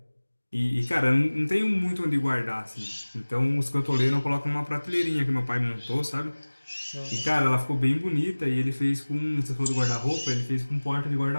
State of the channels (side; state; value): both; inverted; correlation -1.00